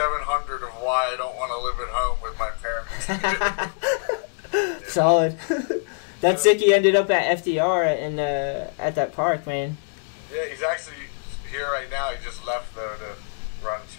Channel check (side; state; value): right; silent; digital silence